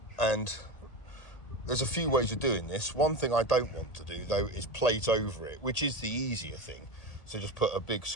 there's a few ways of doing this. One thing I don't want to do though is plate over it, which is the easier thing. So just put a big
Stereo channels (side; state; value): right; late; 1.8 ms